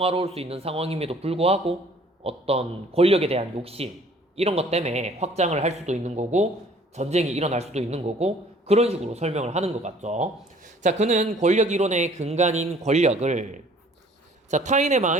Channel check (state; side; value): normal; both; correlation 0.55